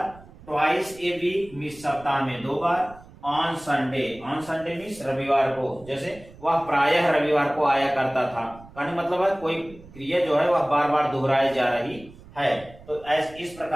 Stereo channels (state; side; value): noise; right; rumble, 21 dB below the sound